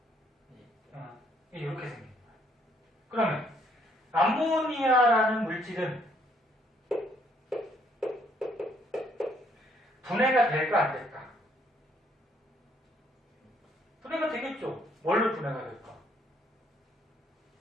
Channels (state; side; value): normal; both; correlation 0.67